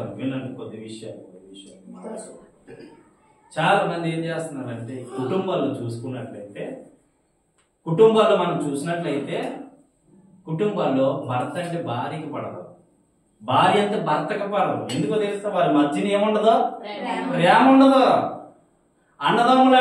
వినండి కొద్ది విషయాలు. చాలా మంది ఏం చేస్తున్నారంటే, కుటుంబాల్లో చూసుకున్నట్లయితే, కుటుంబాల్లో మనం చూసినట్లయితే కుటుంబాల్లో భర్త అంటే భార్యకి పడదు, భార్య అంటే భర్తకి పడదు. ఎందుకో తెలుస్తా? వారి మధ్యన ఏముండదు? ప్రేమ ఉండదు. అన్నదమ్ములు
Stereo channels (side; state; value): both; identical; correlation 1.00